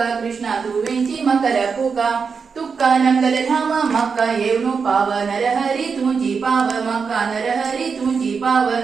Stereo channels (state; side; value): quieter; left; 5.5 dB